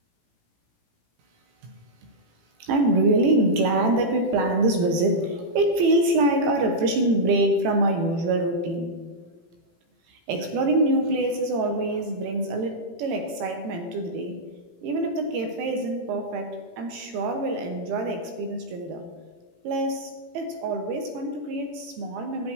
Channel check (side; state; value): left; late; 18 ms